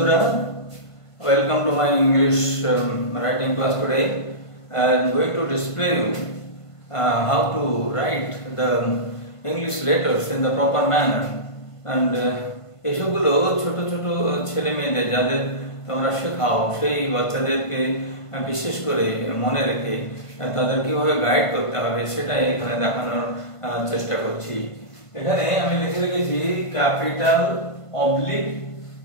welcome to my English writing class today. I am going to display you how to write the English letters in the proper manner. And এসবগুলো ছোট ছোট ছেলে মেয়েদের যাদের তোমরা শেখাও সেই বাচ্চাদেরকে বিশেষ করে মনে রেখে তাদের কিভাবে গাইড করতে হবে সেটাই এখানে দেখানোর চেষ্টা করছি। এখানে আমি লিখে রেখেছি capital oblique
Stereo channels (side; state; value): right; late; 1.5 ms